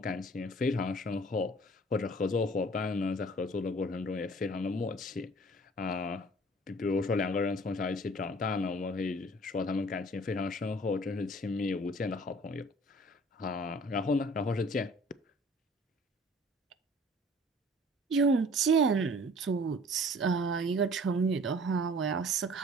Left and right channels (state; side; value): normal; both; correlation 0.51